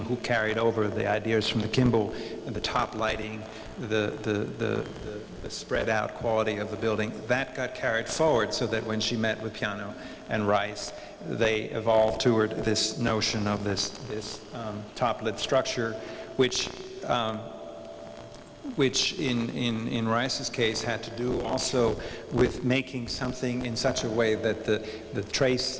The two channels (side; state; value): both; identical; correlation 1.00